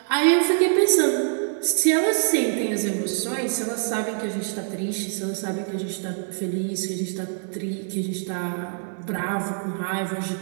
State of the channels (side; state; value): left; silent; digital silence